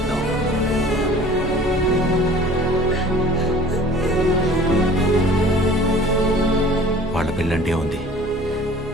వాళ్ళ పెళ్ళంటే ఉంది,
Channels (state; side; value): normal; both; correlation 0.48